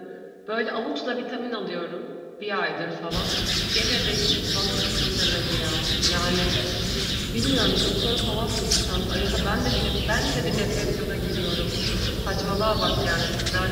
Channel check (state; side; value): identical; both; correlation 1.00